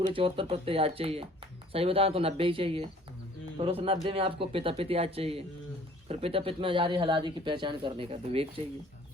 74 प्रत्यय याद चाहिए। सही बताएं तो 90 ही चाहिए। फिर उस 90 में आपको पिता पित याद चाहिए। फिर पिता पित में जारी हलादि की पहचान करने का विवेक चाहिए।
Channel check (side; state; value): both; normal; correlation 0.54